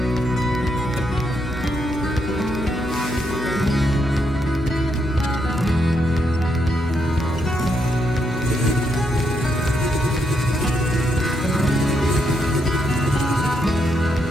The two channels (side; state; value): both; normal; correlation 0.79